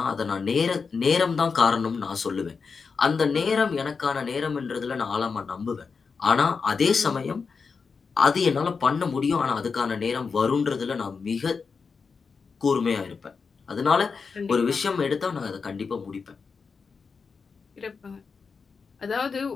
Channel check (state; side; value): quieter; right; 5.2 dB